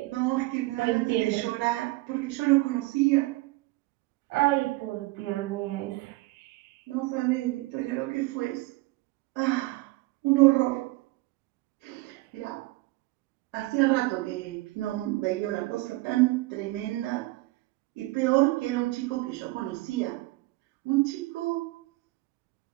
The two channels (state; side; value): quieter; left; 21.1 dB